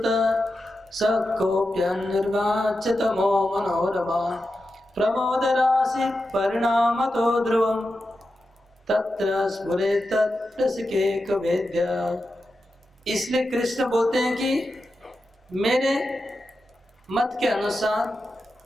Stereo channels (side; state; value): both; normal; correlation 0.90